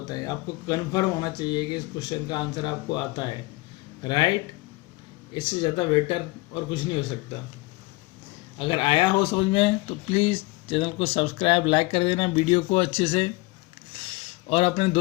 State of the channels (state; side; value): quieter; right; 22.8 dB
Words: आपको कन्फर्म होना चाहिए कि इस क्वेश्चन का आंसर आपको आता है, राइट। इससे ज़्यादा बेटर और कुछ नहीं हो सकता। अगर आया हो समझ में तो प्लीज़ चैनल को सब्सक्राइब, लाइक कर देना वीडियो को अच्छे से, और अपने